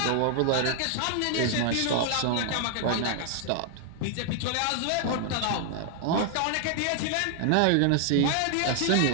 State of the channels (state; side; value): different; both; correlation 0.00